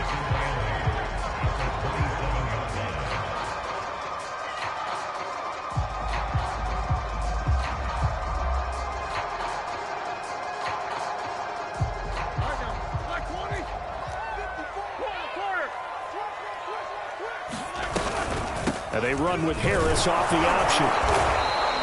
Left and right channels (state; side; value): identical; both; correlation 1.00